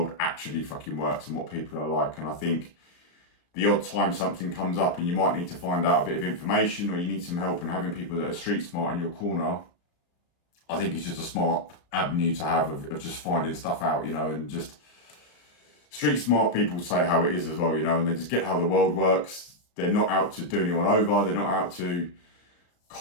actually fucking works and what people are like. And I think the odd time something comes up and you might need to find out a bit of information or you need some help, and having people that are street smart in your corner, I think it's just a smart avenue to have of just finding stuff out, you know, and just street smart people say how it is as well, you know, and they just get how the world works. They're not out to do anyone over. They're not out to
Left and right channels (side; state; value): right; late; 34 ms